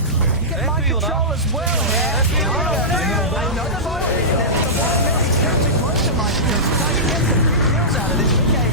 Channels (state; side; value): normal; both; correlation -0.17